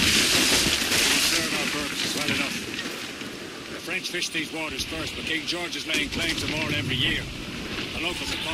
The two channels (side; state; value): both; identical; correlation 1.00